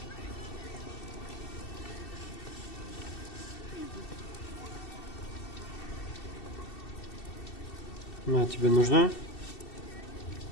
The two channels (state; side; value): late; right; 2.7 ms